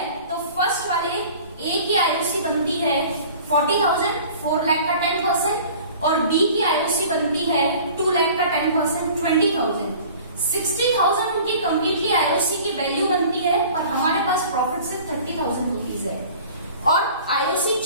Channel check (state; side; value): inverted; both; correlation -0.45